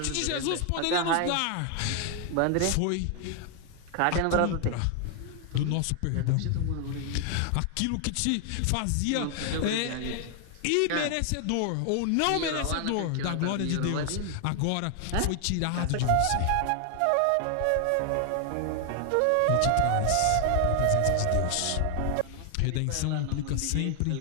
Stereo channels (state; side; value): different; both; correlation 0.00